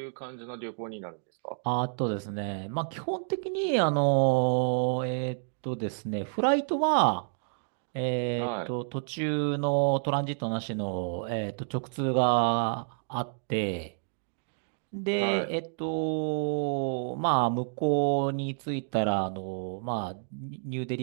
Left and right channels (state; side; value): silent; left; digital silence